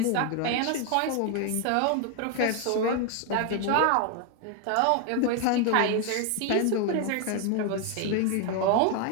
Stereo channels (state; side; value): different; both; correlation 0.01